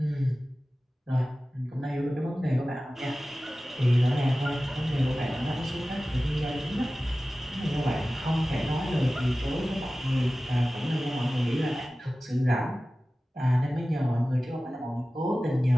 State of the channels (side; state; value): both; normal; correlation 0.96